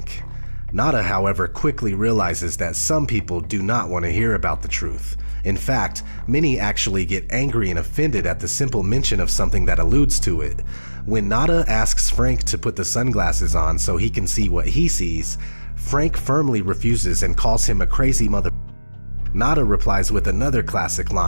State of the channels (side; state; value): both; inverted; correlation -1.00